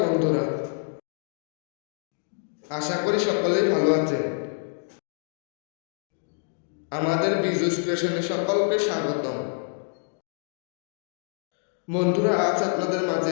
বন্ধুরা, আশা করি সকলেই ভালো আছেন। আমাদের বিজু স্টেশনে সকলকে স্বাগতম। বন্ধুরা, আজ আপনাদের মাঝে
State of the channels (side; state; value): right; silent; digital silence